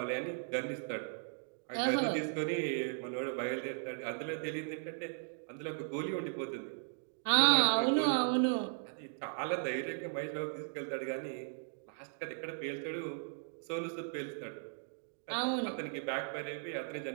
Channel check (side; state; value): left; silent; digital silence